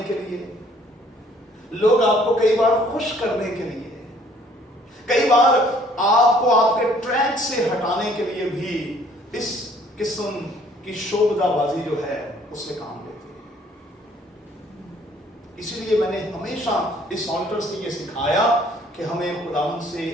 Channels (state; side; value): normal; both; correlation 0.59